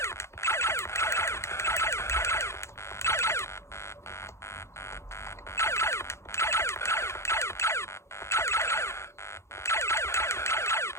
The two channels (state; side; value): late; right; 0.13 ms